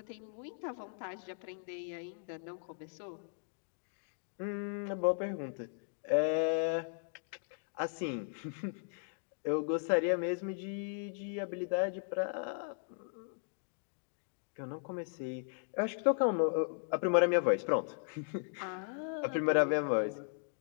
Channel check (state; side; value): silent; right; digital silence